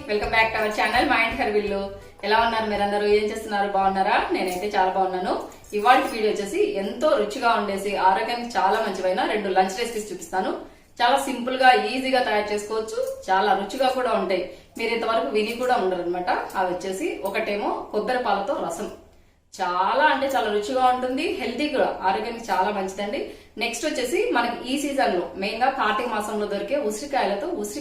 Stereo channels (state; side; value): identical; both; correlation 1.00